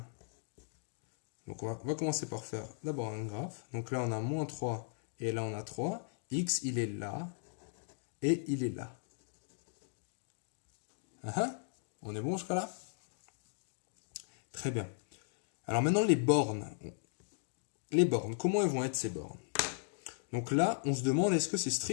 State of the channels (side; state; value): right; silent; digital silence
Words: Donc, on va commencer par faire d'abord un graphe. Donc là, on a moins 3 et là, on a 3. X, il est là et il est là. On est bon jusqu'à là? Très bien. Alors maintenant, les bornes. Les bornes, comment elles vont être ces bornes? Donc là, on se demande est-ce que c'est